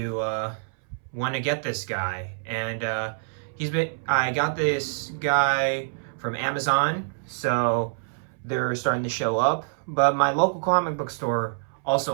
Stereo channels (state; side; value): silent; left; 61 dB below the other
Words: want to get this guy. And I got this guy from Amazon, so they're starting to show up. But my local comic book store